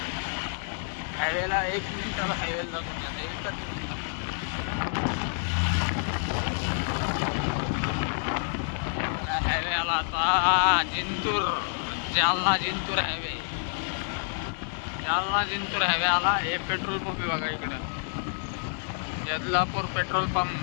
हायवेला 1 मिनिटाला हायवेला लागून जातं एकच हायवे आला आता जिंतूर जालना जिंतूर हायवे आला हे पेट्रोल पंप आहे बघा इकडं यदलापूर पेट्रोल पंप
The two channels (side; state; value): right; silent; 59 dB below the other